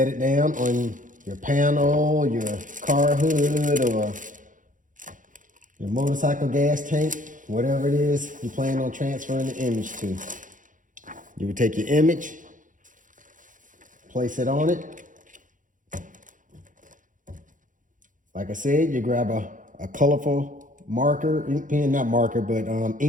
it down on your panel, your car hood, or your motorcycle gas tank, whatever it is you plan on transferring the image to. You would take your image, place it on it. Like I said, you grab a colorful marker, ink pen, not marker, but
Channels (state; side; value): late; left; 0.38 ms